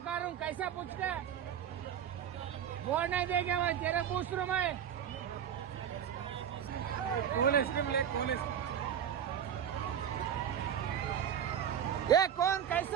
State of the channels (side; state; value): left; quieter; 8.9 dB